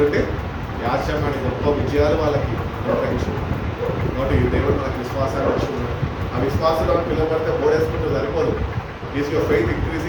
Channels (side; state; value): both; identical; correlation 1.00